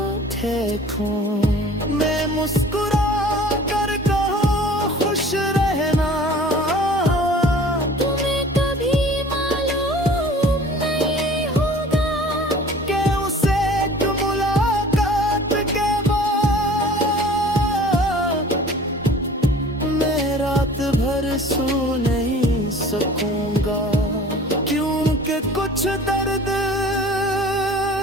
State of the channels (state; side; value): normal; both; correlation 0.46